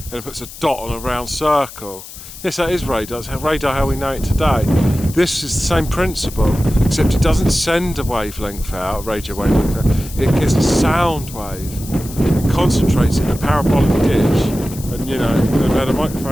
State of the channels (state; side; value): noise; left; hiss, 15 dB below the sound